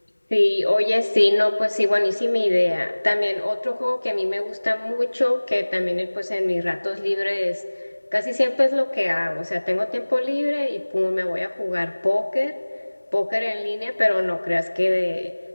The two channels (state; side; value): inverted; both; correlation -1.00